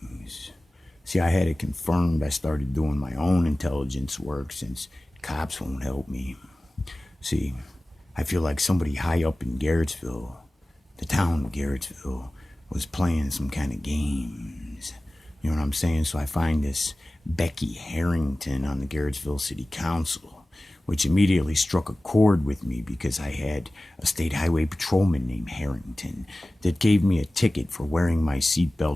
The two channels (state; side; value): normal; both; correlation 0.97